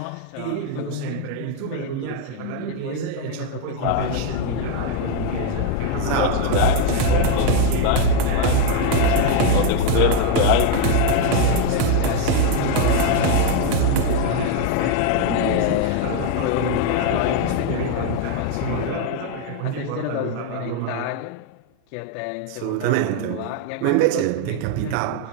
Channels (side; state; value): both; different; correlation 0.01